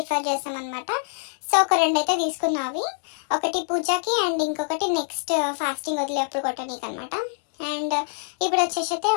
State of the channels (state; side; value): silent; right; digital silence